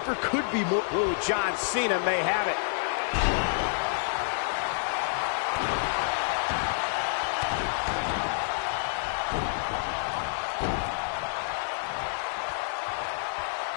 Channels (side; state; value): right; silent; digital silence